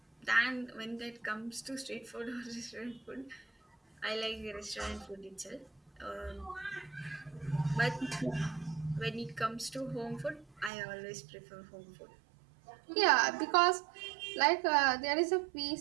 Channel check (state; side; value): drops out; left; at 10.7 s